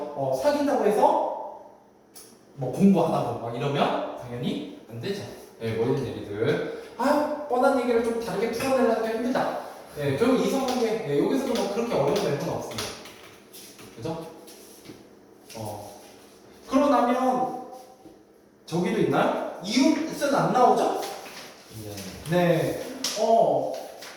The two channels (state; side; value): identical; both; correlation 1.00